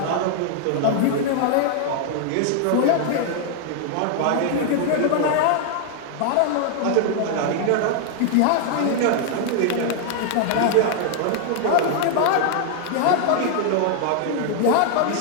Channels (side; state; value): both; different; correlation 0.00